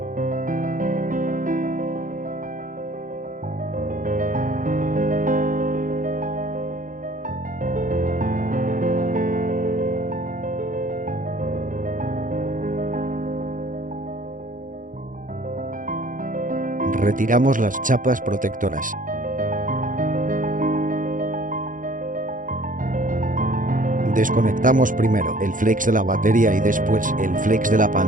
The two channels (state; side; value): late; left; 0.39 ms